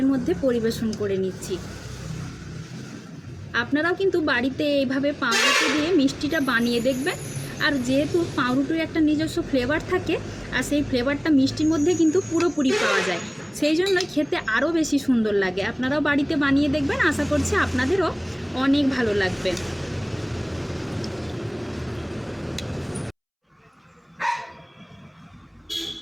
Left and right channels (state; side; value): identical; both; correlation 1.00